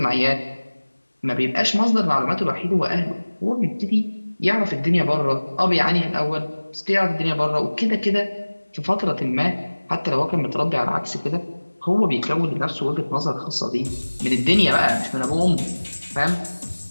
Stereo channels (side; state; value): both; inverted; correlation -1.00